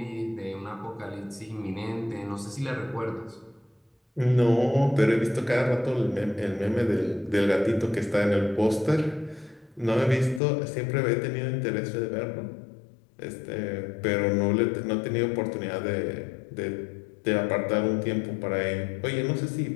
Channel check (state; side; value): drops out; right; at 10.4 s